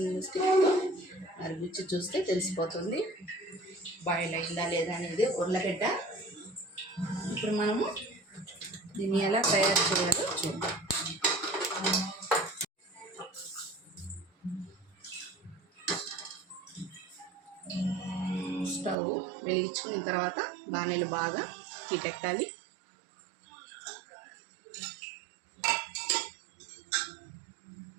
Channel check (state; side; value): drops out; left; at 18.9 s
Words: స్టిక్తో మరి రుచి చూస్తే తెలిసిపోతుంది బాయిల్ అయిందా లేదా అనేది ఉర్లగడ్డ. ఇప్పుడు మనము దీన్ని ఎలా తయారు చేయాలో చూద్దాం. స్టవ్ వెలిగించుకున్న తర్వాత బాణీలు బాగా హీటెక్కాలి.